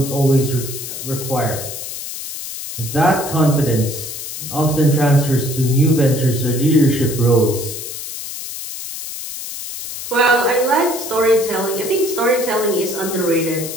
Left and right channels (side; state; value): left; noise; hiss, 8 dB below the sound